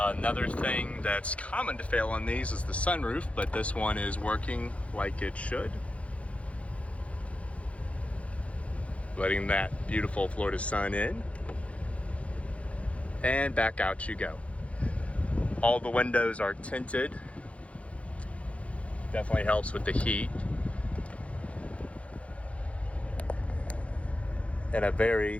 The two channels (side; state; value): right; late; 0.063 ms